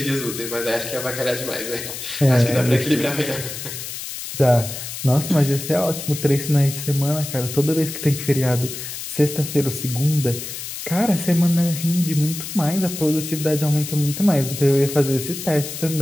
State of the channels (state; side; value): noise; left; hiss, 8 dB below the sound